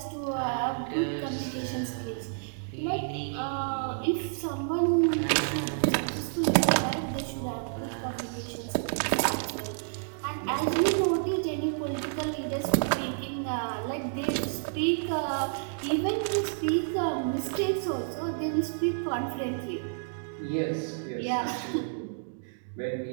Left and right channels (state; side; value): silent; left; digital silence